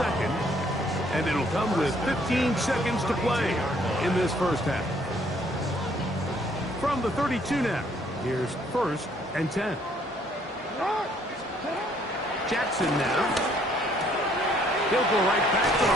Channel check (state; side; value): normal; both; correlation 0.64